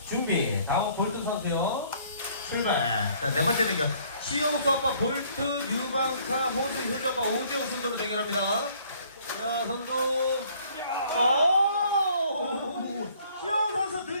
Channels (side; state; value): both; inverted; correlation -0.60